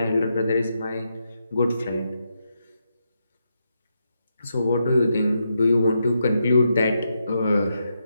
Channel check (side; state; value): both; inverted; correlation -0.83